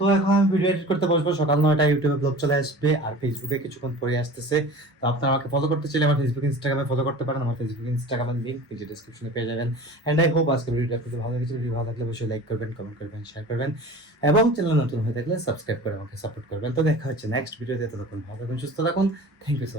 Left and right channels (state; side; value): normal; both; correlation 0.39